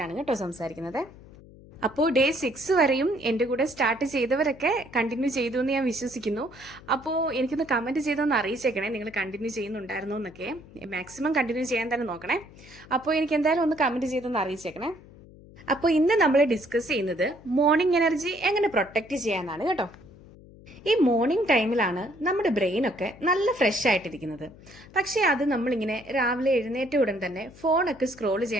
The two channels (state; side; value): noise; left; hum, 21 dB below the sound